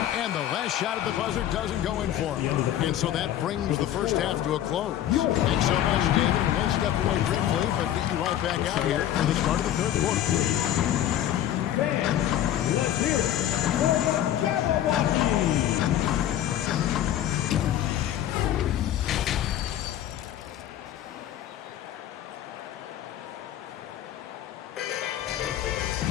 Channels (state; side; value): quieter; right; 11.8 dB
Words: And the last shot at the buzzer doesn't go in for him. And so that brings the first half to a close. Thanks so much, David. And we'll step away briefly, but get you right back out here for the start of the third quarter. Fans, let's hear it for the Jabberwocky.